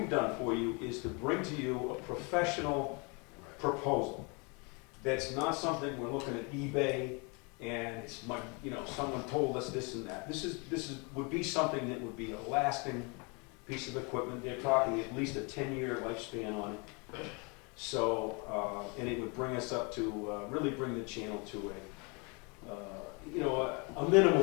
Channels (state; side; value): quieter; right; 31.7 dB